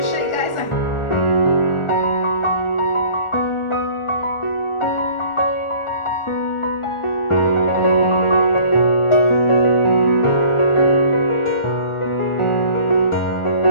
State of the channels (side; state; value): right; late; 1.4 ms